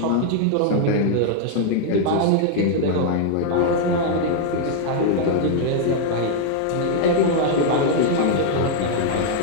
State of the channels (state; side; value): different; both; correlation 0.00